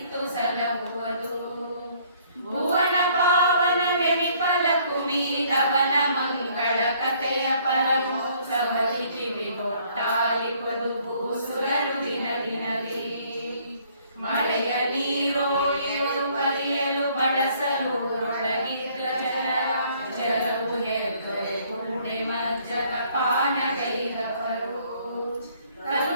ಸಲಹುವುದು. ಭುವನ ಪಾವನ ನೆನಿಪಲಕು ಮೀರವನ ಮಂಗಳ ಕಥೆಯ ಪರಮೋತ್ಸವದಿ ಕಿವಿ ಕೊಟ್ಟಾಲಿಪದು ಭೂಸುರರು ದಿನ ದಿನಲಿ. ಮಳೆಯ ನೀರೋಳಿಯೊಳು ಪರಿಯಲು ಬಳಸಲು ಒಳಗಿದ್ದ ಜಲವು ಹೆದ್ದೊರೆ ಕೂಡೆ ಮಜ್ಜಗ ಪಾನಗೈದವರು.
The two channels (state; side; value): inverted; both; correlation -0.62